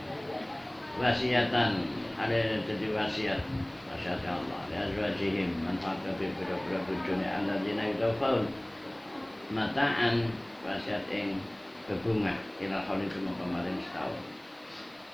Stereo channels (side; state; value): right; noise; hiss, 30 dB below the sound